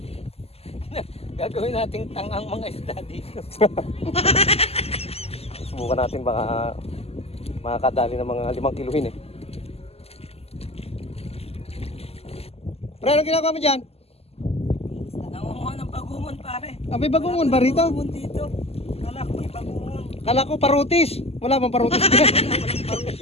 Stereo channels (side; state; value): right; late; 0.29 ms